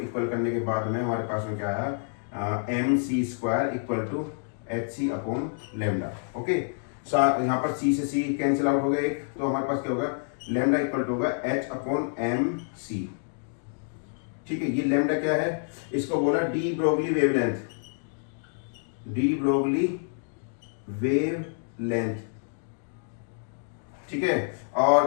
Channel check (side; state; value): right; silent; digital silence